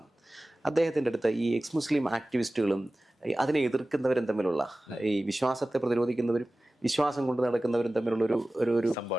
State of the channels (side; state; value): both; normal; correlation 0.96